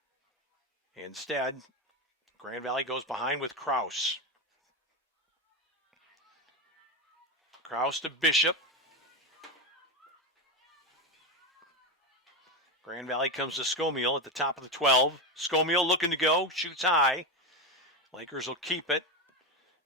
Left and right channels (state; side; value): normal; both; correlation 0.14